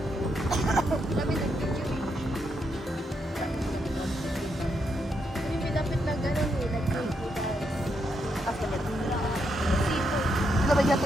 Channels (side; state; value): both; normal; correlation 0.80